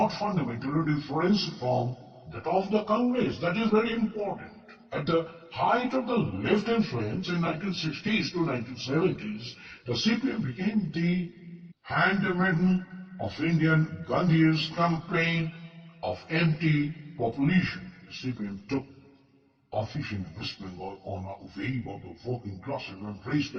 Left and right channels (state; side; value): identical; both; correlation 1.00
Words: fundamentally different from that of the Congress. That is very important. At the height of the left influence in 1960s to 1970s, the CPM became the handmaiden of Indian Gandhi's campaign of anti-population. The CPM took office in West Bengal on a wave of the working classes and raised